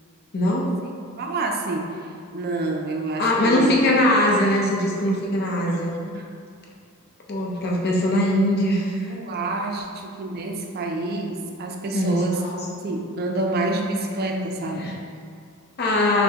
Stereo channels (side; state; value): both; normal; correlation 0.39